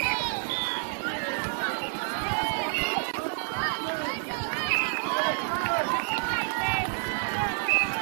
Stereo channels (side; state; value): left; silent; digital silence